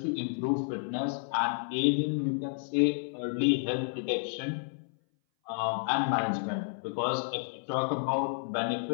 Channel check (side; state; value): right; silent; 57 dB below the other